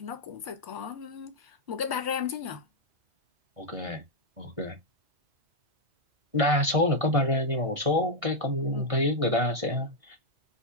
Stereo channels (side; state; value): left; late; 1.6 ms